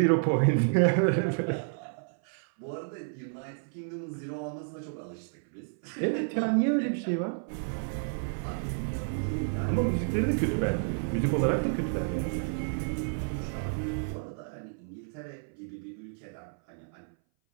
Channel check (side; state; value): left; silent; 57 dB below the other